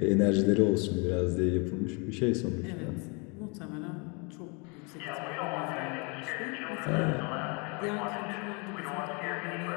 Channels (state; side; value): quieter; right; 32.5 dB